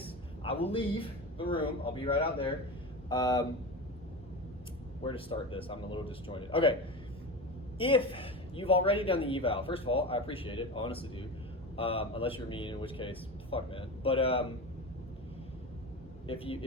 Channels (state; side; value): normal; both; correlation 0.26